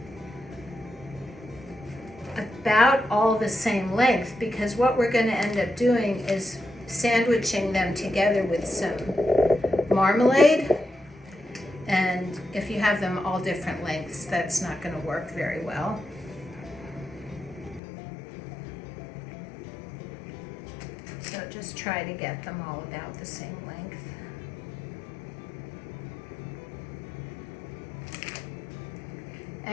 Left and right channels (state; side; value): drops out; right; at 17.8 s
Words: about all the same length, because what we're going to end up doing is sandwiching them together with some marmalade. And if you have them all different lengths, that's not going to work very well. So just try to get them all about the same length.